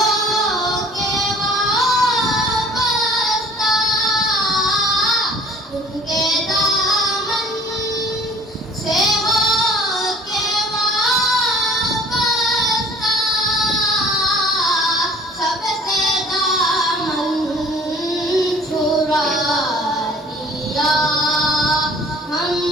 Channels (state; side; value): normal; both; correlation 0.52